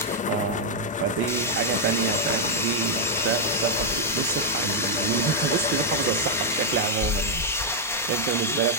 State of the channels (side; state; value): both; normal; correlation -0.03